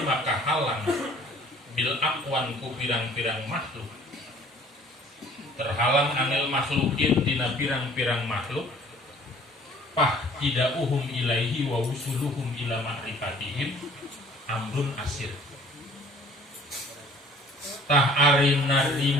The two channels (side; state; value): both; normal; correlation 0.53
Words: kahalang bil aqwan ku pirang-pirang makhluk, terhalang anil makhlukin dina pirang-pirang makhluk, pah tidauhum ilaihi wa usuluhum ila ma'rifatihim amrun asir. Tah ari